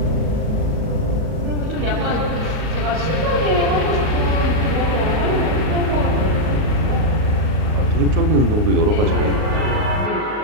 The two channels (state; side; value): late; left; 38 ms